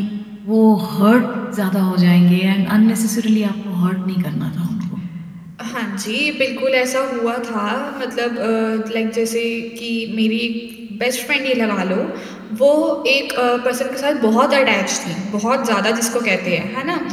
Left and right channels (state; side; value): identical; both; correlation 1.00